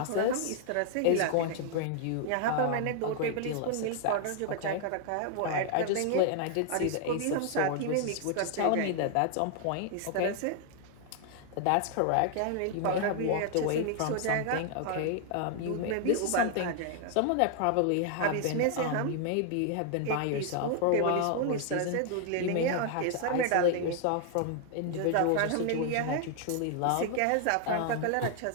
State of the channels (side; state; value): both; different; correlation 0.00